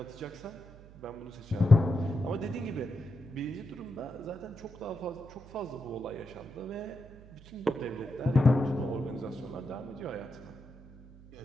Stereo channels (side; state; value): right; noise; hum, 20 dB below the sound